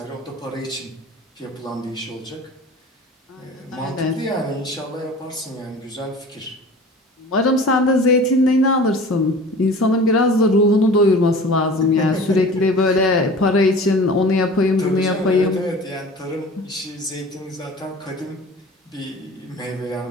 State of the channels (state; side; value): normal; both; correlation 0.41